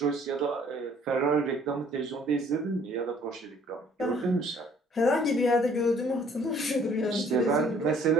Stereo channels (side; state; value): both; normal; correlation 0.58